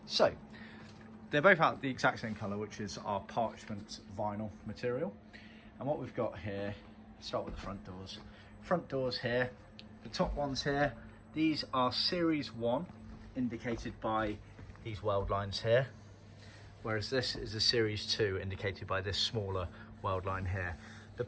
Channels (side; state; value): both; identical; correlation 1.00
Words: So they're both out the exact same colour, which is our parchment vinyl material. And what we've got here, start with the front doors. Front doors here, the top ones here, these are Series 1, indicated by these weld lines here, whereas this is a Series 2, indicated by this smaller weld line here. The